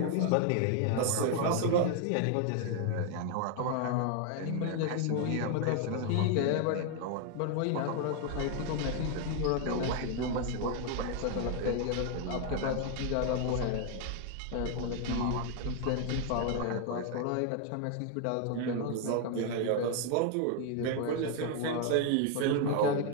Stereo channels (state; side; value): different; both; correlation 0.00